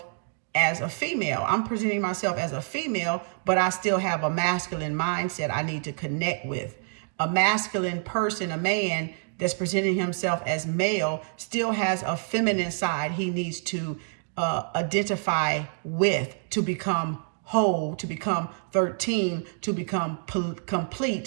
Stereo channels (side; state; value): left; silent; digital silence